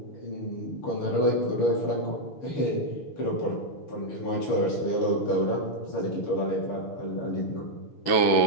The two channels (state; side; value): late; right; 6.1 ms